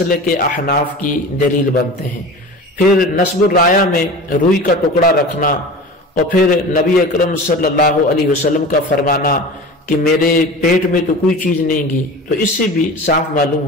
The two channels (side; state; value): both; normal; correlation 0.35